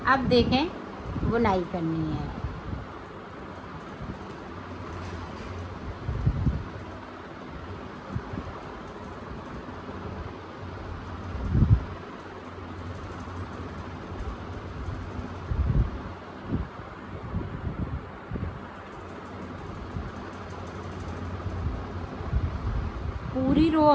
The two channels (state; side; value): identical; both; correlation 1.00